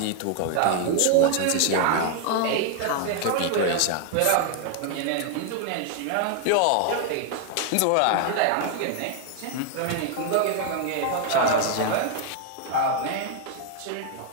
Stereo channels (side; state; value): both; different; correlation 0.00